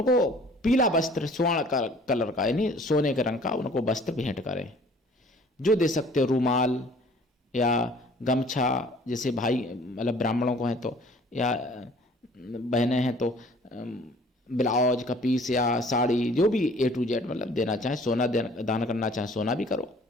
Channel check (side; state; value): both; normal; correlation 0.53